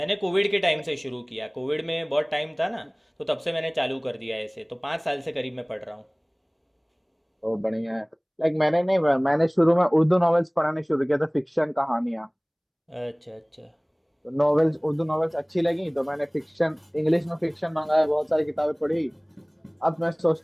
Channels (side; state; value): both; identical; correlation 1.00